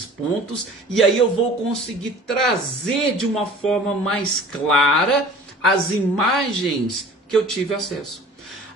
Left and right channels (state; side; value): normal; both; correlation 0.45